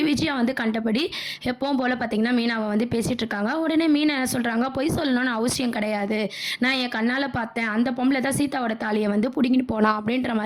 விஜயா வந்து கண்டபடி எப்பவும் போல பார்த்தீங்கன்னா, மீனாவ வந்து பேசிட்டு இருக்காங்க. உடனே மீனா என்ன சொல்றாங்க, "பொய் சொல்லணும்னு அவசியம் கிடையாது. நான் என் கண்ணால பார்த்தேன். அந்த பொம்பள தான் சீதாவோட தாலிய வந்து புடுங்கிட்டு போனா." அப்படின்ற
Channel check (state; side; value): identical; both; correlation 1.00